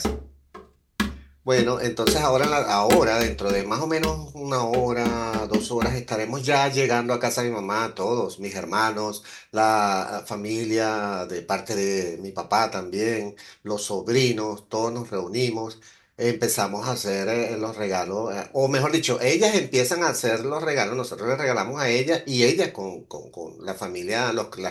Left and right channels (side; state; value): both; identical; correlation 1.00